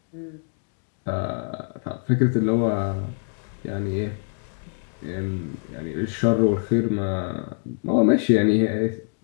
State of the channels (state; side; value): silent; right; digital silence